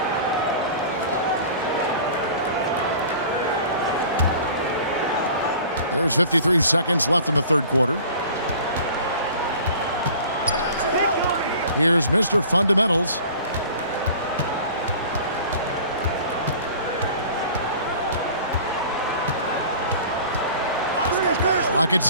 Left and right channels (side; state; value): both; inverted; correlation -0.44